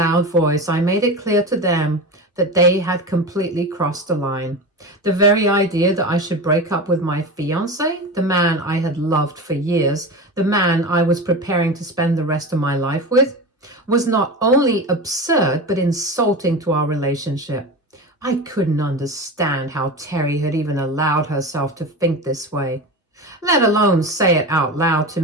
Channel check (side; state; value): both; normal; correlation 0.26